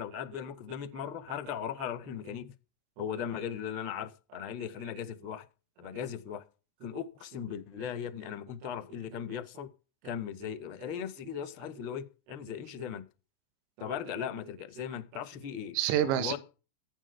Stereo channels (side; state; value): left; late; 30 ms